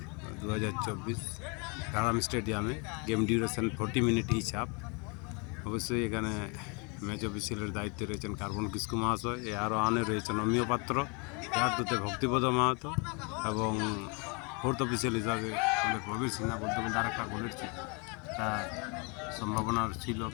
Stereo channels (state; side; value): quieter; right; 32.4 dB